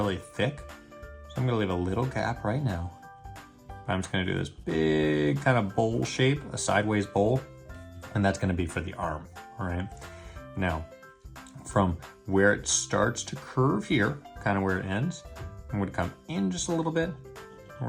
thick. So I'm gonna leave a little gap right now. I'm just gonna do this big kind of bowl shape, a sideways bowl, and that's gonna be for the arm, all right? Now, from where it starts to curve here, kind of where it ends, I'm gonna come in just a little bit, and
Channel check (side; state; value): both; identical; correlation 1.00